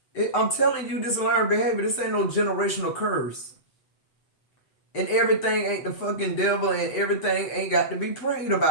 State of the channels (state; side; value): late; right; 7.9 ms